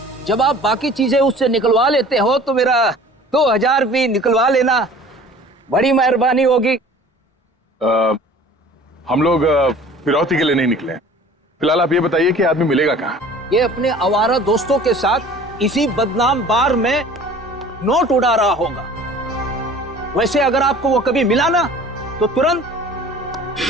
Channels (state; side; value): normal; both; correlation 0.47